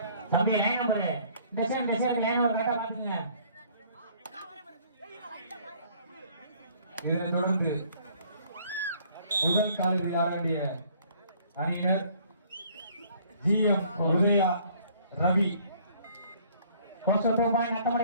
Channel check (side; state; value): both; inverted; correlation -0.58